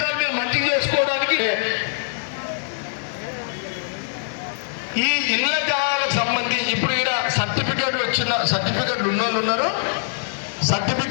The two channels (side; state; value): right; silent; digital silence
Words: మీరు మంచిగా చేసుకోవడానికి ఈ ఇళ్ల జాగాలకు సంబంధించి ఇప్పుడు ఇక్కడ సర్టిఫికెట్ వచ్చిన సర్టిఫికెట్లు ఉన్నోళ్ళు ఉన్నారు,